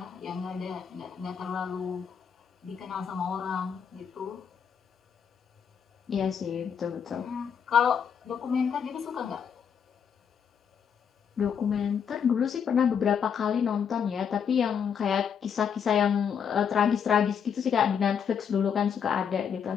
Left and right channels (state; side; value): quieter; right; 7.4 dB